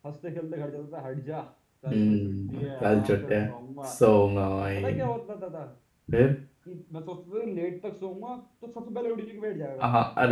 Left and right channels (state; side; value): identical; both; correlation 1.00